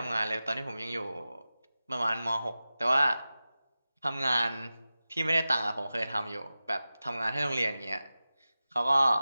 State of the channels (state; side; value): inverted; both; correlation -0.95